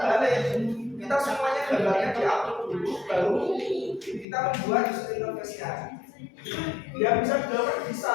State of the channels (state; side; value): drops out; right; at 4.2 s